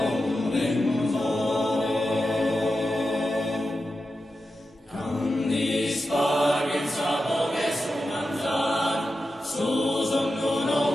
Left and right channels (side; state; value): both; normal; correlation 0.90